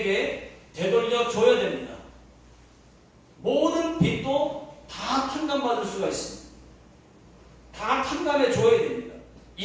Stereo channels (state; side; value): identical; both; correlation 1.00